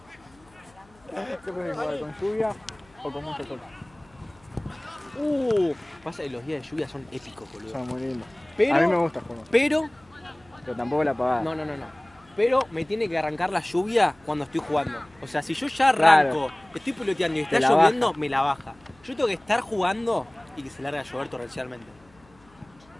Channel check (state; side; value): noise; left; hum, 29 dB below the sound